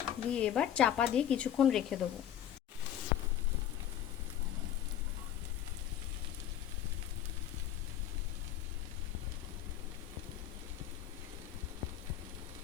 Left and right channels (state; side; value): quieter; right; 10.8 dB